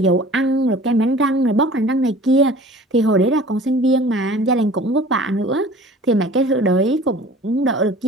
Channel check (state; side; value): normal; both; correlation 0.45